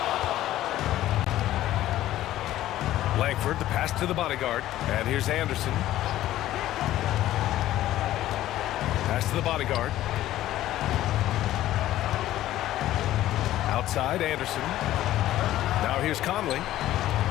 Langford, the pass to the bodyguard. And here's Anderson. Pass to the bodyguard. Outside, Anderson. Now here's Conley.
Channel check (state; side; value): quieter; right; 14.1 dB